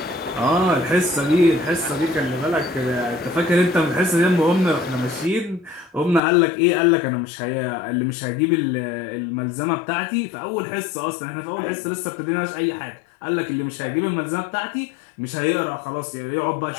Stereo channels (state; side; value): drops out; right; at 6.2 s